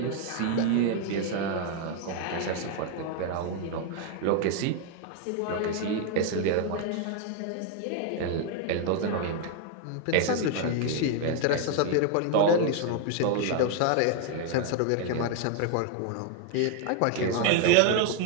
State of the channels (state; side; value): different; both; correlation 0.00